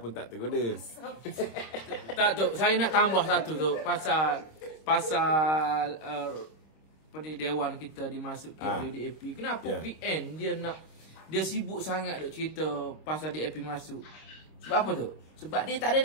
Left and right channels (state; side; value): late; right; 26 ms